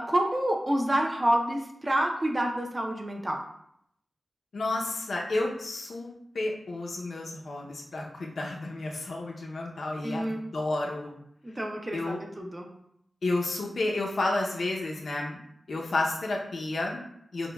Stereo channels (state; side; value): normal; both; correlation 0.94